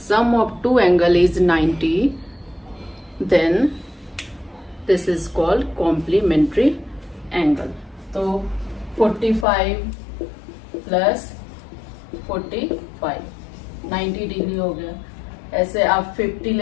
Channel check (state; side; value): drops out; right; at 9.5 s